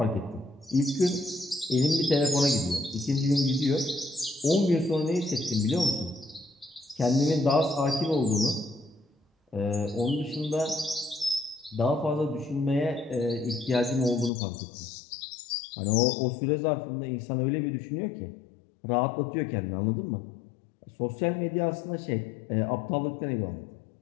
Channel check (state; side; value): drops out; right; at 14.3 s